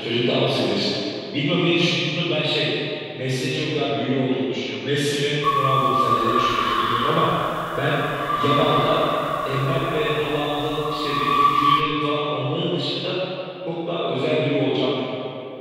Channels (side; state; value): both; identical; correlation 1.00